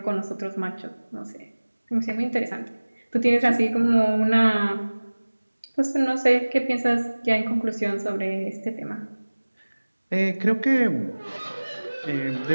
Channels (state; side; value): inverted; both; correlation -1.00